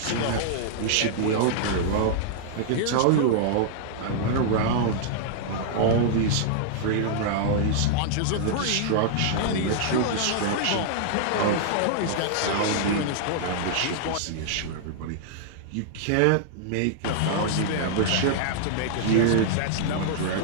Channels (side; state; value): both; different; correlation -0.01